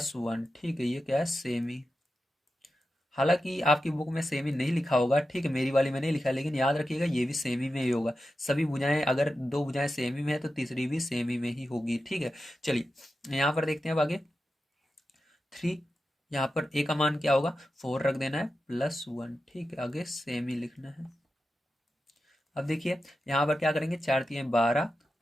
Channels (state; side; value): normal; both; correlation 0.91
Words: ठीक है, ये क्या है, सेमी। हालांकि आपकी बुक में सेमी नहीं लिखा होगा, ठीक है, मेरी वाली में नहीं लिखा, लेकिन याद रखिएगा ये भी सेमी में ही होगा। सभी भुजाएं, अगर दो भुजाएं सेमी में है तो तीसरी भी सेमी में ही होगी। ठीक है, चलिए यहाँ पर देखते हैं अब आगे। 3, यहाँ पर ए का मान क्या होगा, 4 रख देना है, +1। ठीक है, आगे सेमी लिखना है। अब देखिए यहाँ पर क्या करेंगे, 4×3=12